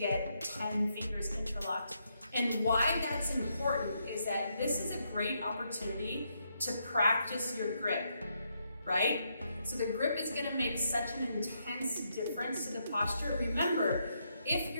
10 fingers interlocked. And why that's important is that this is a great opportunity to practice your grip, right? So the grip is going to make such an intense difference to the posture. Remember, if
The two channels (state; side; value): inverted; both; correlation -0.78